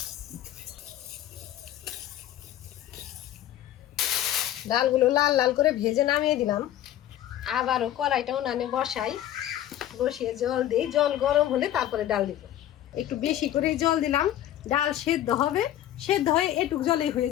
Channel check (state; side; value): quieter; right; 12.4 dB